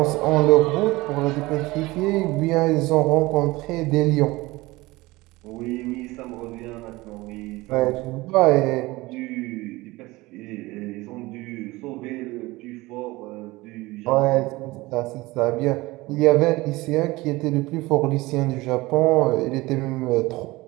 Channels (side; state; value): left; quieter; 20.7 dB